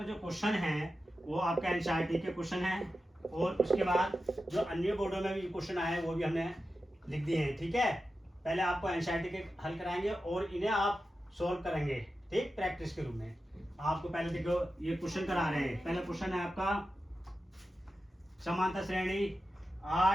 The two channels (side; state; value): both; normal; correlation 0.92